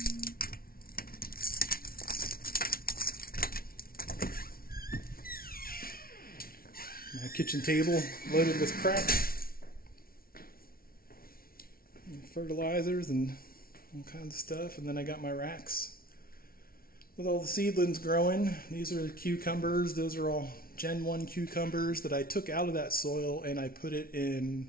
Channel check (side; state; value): right; late; 0.43 ms